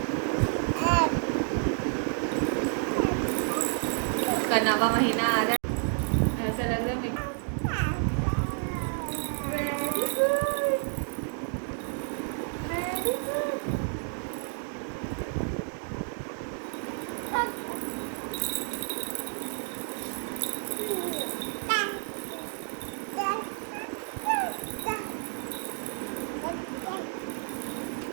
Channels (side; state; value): left; silent; 56 dB below the other